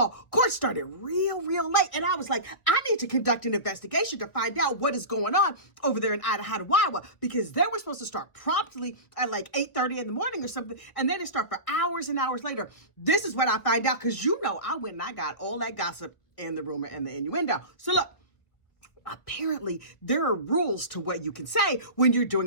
court started real late. And I was like, I need to conduct an investigation to find out what is going on over there in Idaho, because they were supposed to start promptly at like 8:30 in the morning or something. And then it start for hours and hours later. This is what I find out because I went and I got all that gossip and the rumor and the innuendo. So look. Apparently, there are rules to what you can say when you're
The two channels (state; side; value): late; right; 1.2 ms